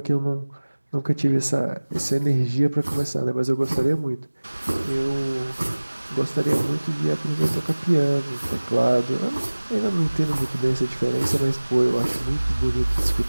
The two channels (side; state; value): both; inverted; correlation -1.00